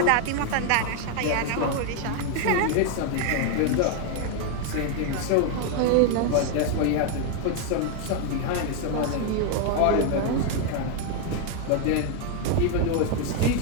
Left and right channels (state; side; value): different; both; correlation 0.01